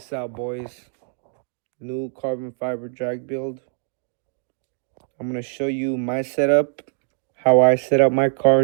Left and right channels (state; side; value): silent; left; 63 dB below the other